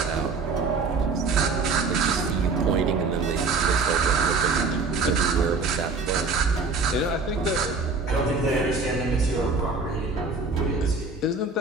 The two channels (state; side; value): quieter; left; 4.1 dB